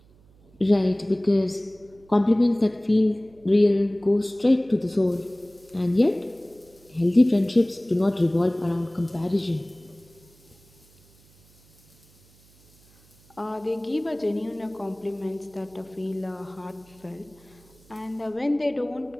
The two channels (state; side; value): noise; right; hum, 29 dB below the sound